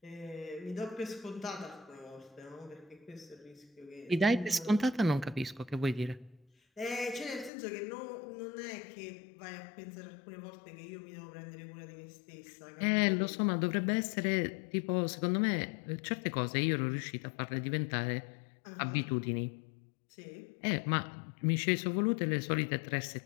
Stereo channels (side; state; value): right; drops out; at 7.5 s